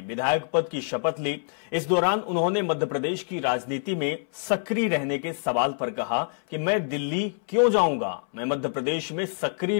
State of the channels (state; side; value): silent; right; 61 dB below the other